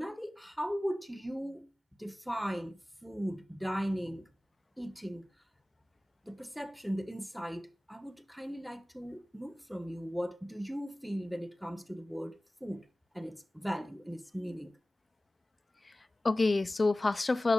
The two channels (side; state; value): both; normal; correlation 0.98